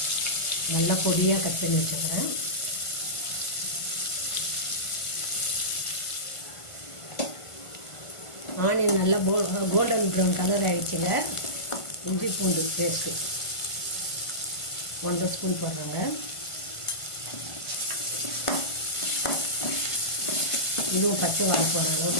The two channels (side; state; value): right; late; 1.5 ms